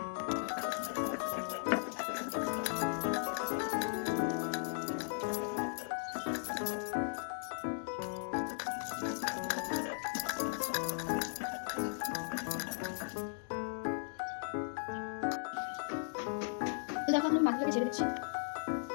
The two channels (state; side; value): silent; right; digital silence